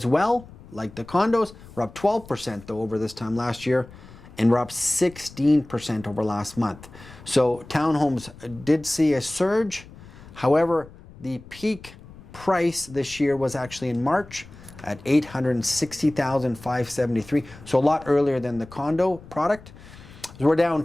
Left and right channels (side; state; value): left; noise; rumble, 19 dB below the sound